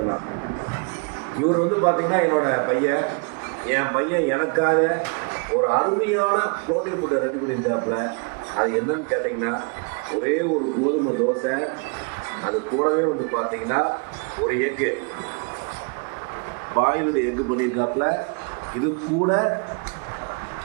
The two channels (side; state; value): left; quieter; 36.1 dB